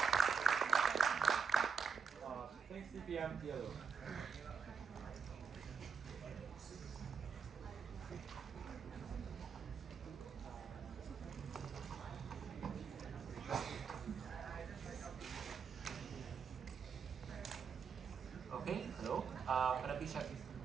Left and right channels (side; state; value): left; quieter; 5.8 dB